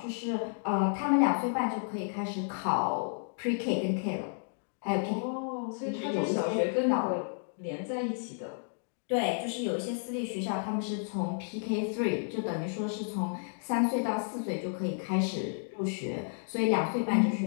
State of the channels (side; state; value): right; silent; digital silence